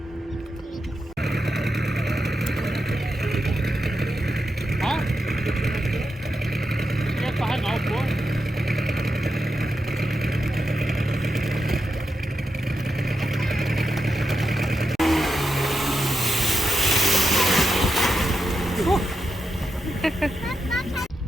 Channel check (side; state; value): both; normal; correlation 0.87